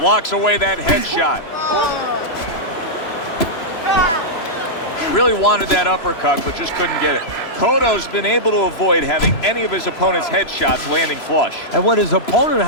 away that headshot. Really wanted that uppercut, but just couldn't get it. Cotto's been able to avoid having any of his opponent's headshots landing flush. And what his opponent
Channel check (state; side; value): late; right; 3.0 ms